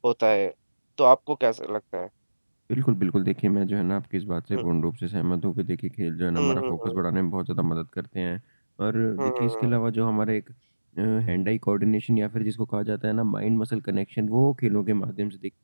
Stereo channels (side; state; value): both; inverted; correlation -1.00